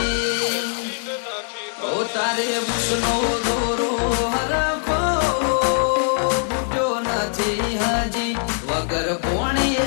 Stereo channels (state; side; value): silent; right; digital silence